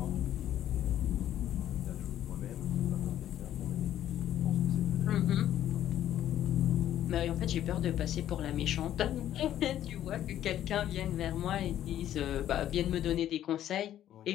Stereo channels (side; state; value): right; quieter; 11.7 dB